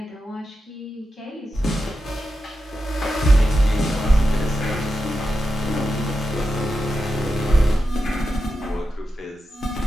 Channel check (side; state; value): both; normal; correlation 0.89